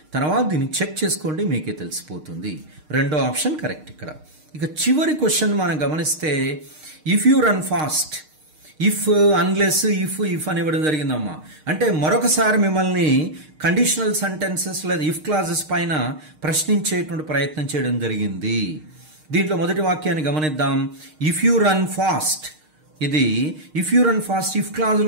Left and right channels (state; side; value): late; left; 6.5 ms